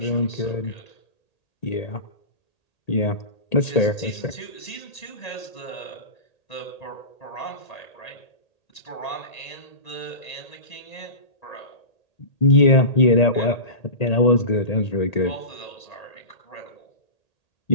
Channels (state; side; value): late; right; 1.8 ms